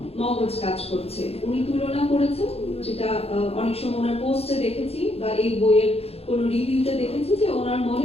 মগজ কাজ করছে। উনি তুলনা করেছেন, যেটা অনেক সময় ওনার পোস্টে দেখেছি বা এই বইয়ের কোনো রিভিউতে দেখেছি, যে ওনার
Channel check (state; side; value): late; right; 0.29 ms